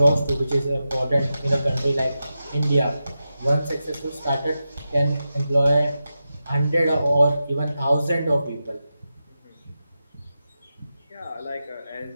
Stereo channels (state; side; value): inverted; both; correlation -0.91